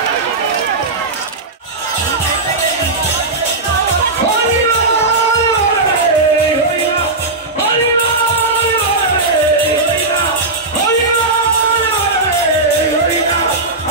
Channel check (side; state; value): left; quieter; 3.2 dB